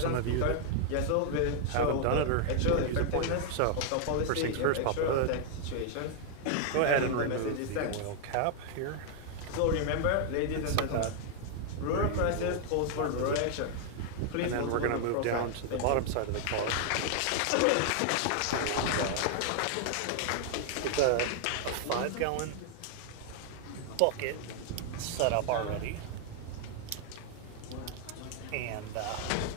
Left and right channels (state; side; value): different; both; correlation 0.00